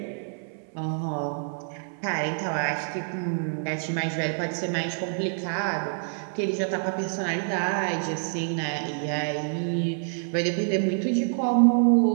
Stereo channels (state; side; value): silent; left; 60 dB below the other